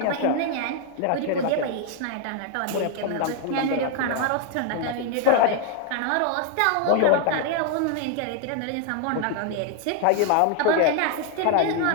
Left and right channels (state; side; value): different; both; correlation 0.00